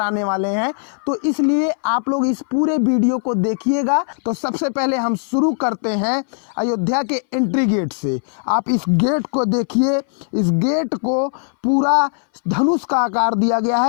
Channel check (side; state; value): right; silent; 62 dB below the other